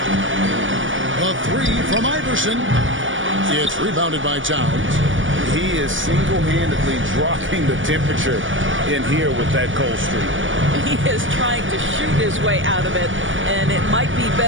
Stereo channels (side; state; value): left; late; 0.57 ms